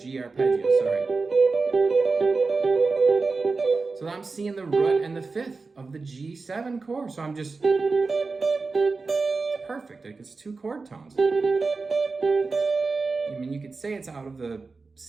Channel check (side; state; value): left; quieter; 4.1 dB